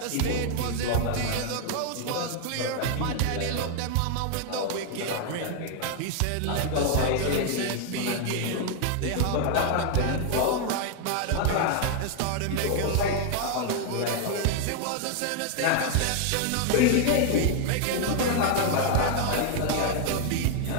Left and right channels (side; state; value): both; different; correlation 0.00